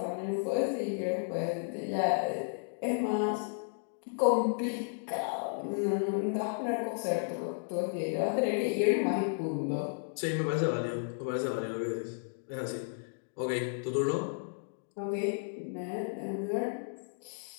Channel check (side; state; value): right; silent; digital silence